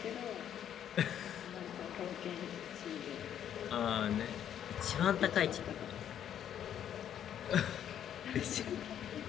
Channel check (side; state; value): right; quieter; 9.8 dB